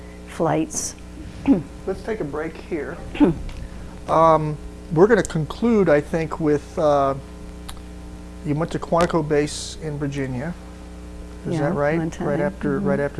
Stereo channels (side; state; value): both; identical; correlation 1.00